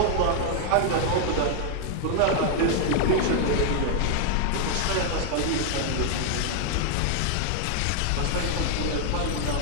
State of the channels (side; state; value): both; different; correlation 0.00